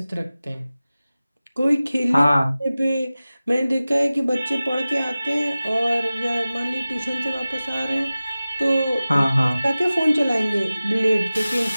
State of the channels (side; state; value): both; inverted; correlation -0.97